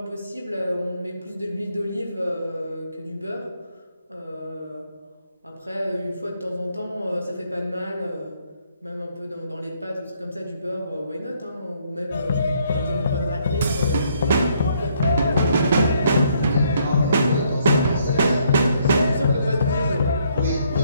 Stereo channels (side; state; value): both; inverted; correlation -0.69